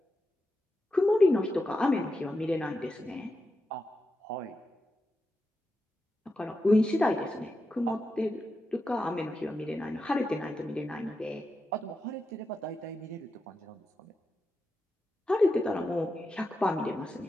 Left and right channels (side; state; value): both; normal; correlation 0.88